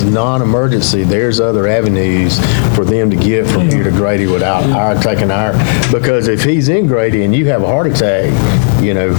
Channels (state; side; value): silent; right; digital silence